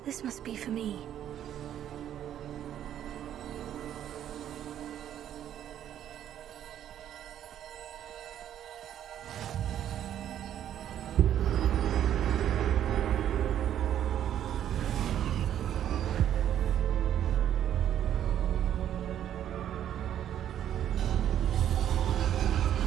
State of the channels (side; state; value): left; quieter; 10.6 dB